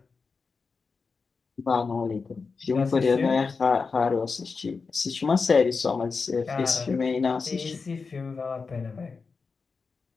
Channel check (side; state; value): right; quieter; 4.7 dB